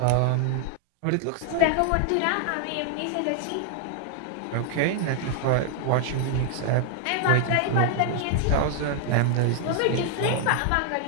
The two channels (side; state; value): both; different; correlation 0.00